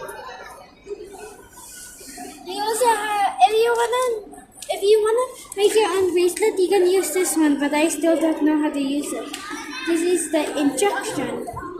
We also have, if you wanna make your own bracelet, you can use this one, but I still don't know how to use it. This is the instruction.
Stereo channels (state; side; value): identical; both; correlation 1.00